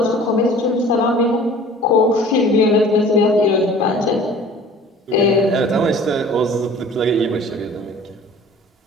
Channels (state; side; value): normal; both; correlation 0.47